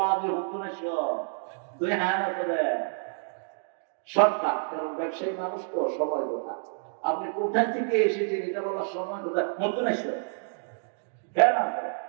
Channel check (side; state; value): left; silent; digital silence